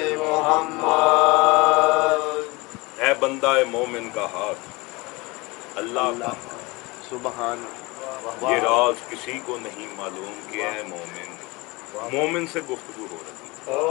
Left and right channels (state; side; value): quieter; right; 24.2 dB